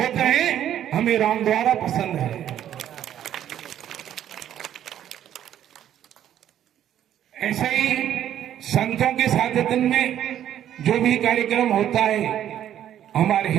हैं, हमें राम द्वारा पसंद है। ऐसे ही संतों के साथ में जो भी कार्यक्रम होता है हमारे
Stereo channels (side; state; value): left; quieter; 10.9 dB